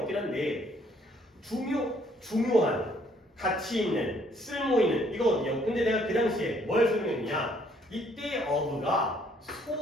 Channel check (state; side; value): normal; both; correlation 0.65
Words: 한데 중요한, 가치 있는, 쓸모 있는 이거거든요. 근데 내가 그 당시에 뭘 설명했냐? 이때 of가